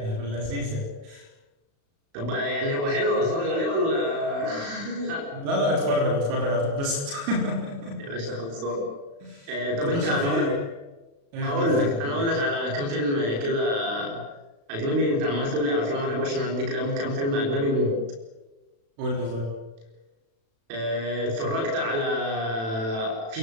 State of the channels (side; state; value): left; late; 36 ms